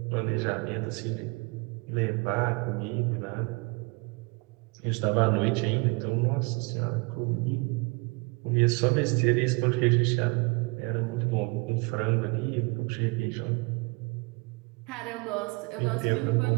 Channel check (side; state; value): left; quieter; 29.7 dB